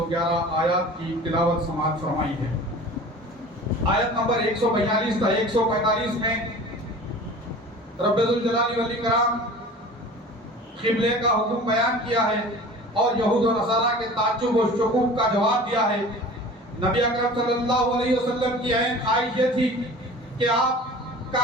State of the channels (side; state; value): both; normal; correlation 0.41